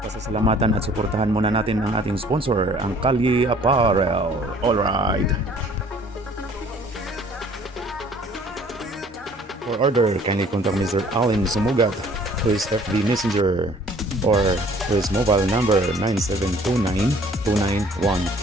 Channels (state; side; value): normal; both; correlation 0.55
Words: pasasalamatan at suportahan muna natin ang ating sponsor, ang Kalye Apparel. Alright! For order, kindly contact Mr. Allen Sumugat to his FB Messenger or to his mobile number 9729-2915.